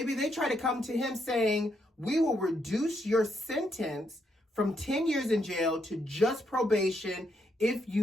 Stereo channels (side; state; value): both; normal; correlation 0.77